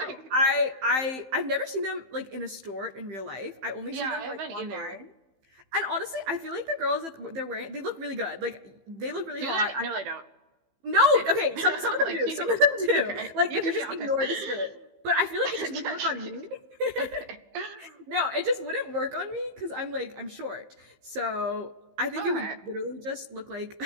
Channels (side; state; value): left; late; 15 ms